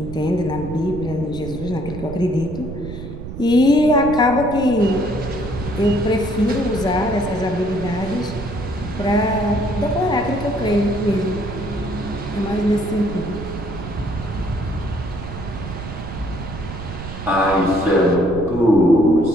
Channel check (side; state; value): right; noise; rumble, 10 dB below the sound